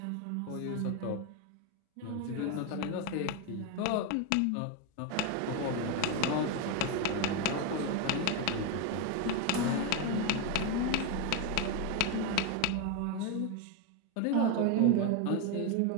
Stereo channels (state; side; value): different; both; correlation 0.02